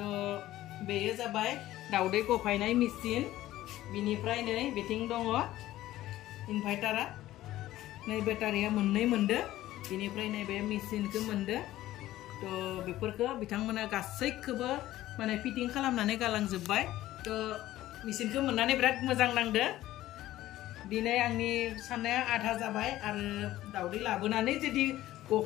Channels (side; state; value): right; quieter; 15.0 dB